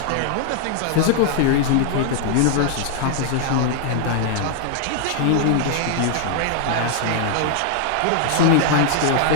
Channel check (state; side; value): different; both; correlation 0.00